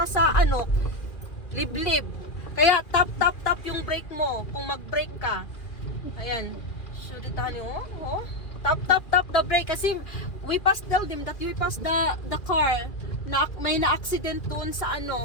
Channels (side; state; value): right; late; 2.4 ms